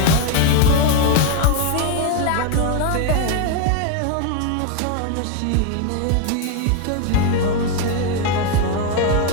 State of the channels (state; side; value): different; both; correlation 0.01